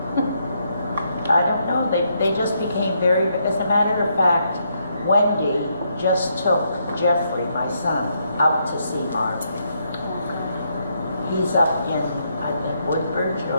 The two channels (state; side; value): inverted; both; correlation -0.76